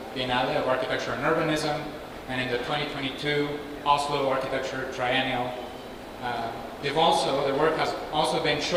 Biennale of Architecture and Urbanism, and in the 2022 Oslo Architecture Triennial. Their work has also been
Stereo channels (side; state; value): both; identical; correlation 1.00